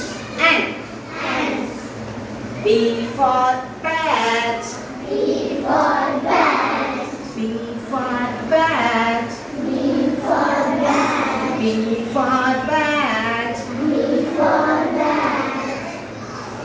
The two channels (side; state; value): both; identical; correlation 1.00